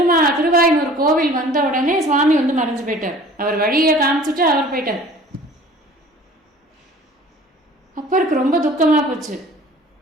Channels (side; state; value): both; normal; correlation 0.47